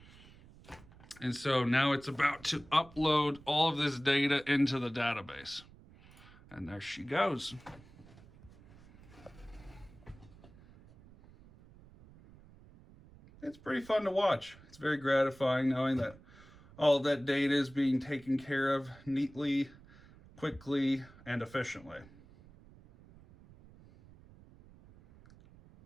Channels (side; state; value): right; noise; rumble, 23 dB below the sound